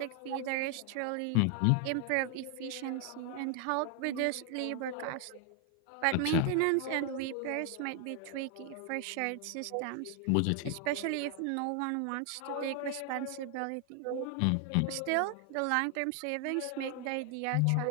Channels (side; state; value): both; different; correlation 0.00